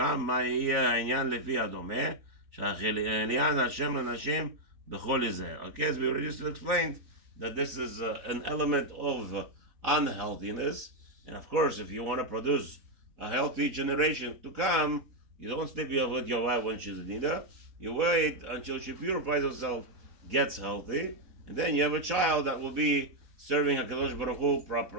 מה יהיה העניין לפי הדומה, שעניין השם לנשים בכל יזהר. Okay, as we already just explained, that this is an element of unhealthiness, and of course, if you want to produce a healthy generation to come, you don't sleep with your wife when she's in Nidah. You wait until she purifies herself, gets healthy, and then you have a child that will be serving HaKadosh Baruch Hu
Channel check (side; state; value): left; late; 4.1 ms